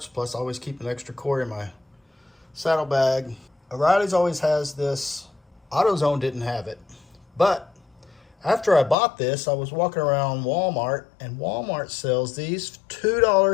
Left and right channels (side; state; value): right; drops out; at 9.0 s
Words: plus I always keep an extra quart in my saddlebag. O'Reilly's always has this. AutoZone didn't have it, but after I bought this, I was walking around Walmart, and Walmart sells these